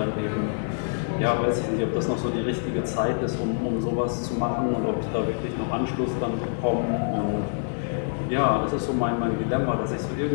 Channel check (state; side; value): silent; right; 61 dB below the other